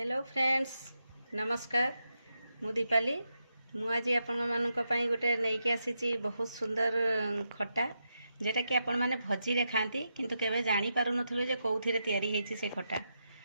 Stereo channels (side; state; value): both; inverted; correlation -0.85